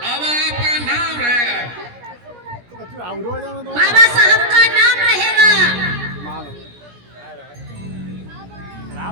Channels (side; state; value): left; late; 17 ms